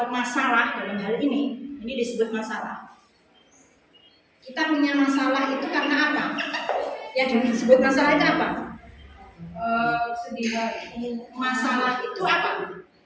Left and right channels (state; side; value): identical; both; correlation 1.00